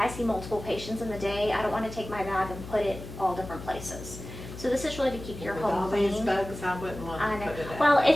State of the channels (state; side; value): noise; left; hum, 12 dB below the sound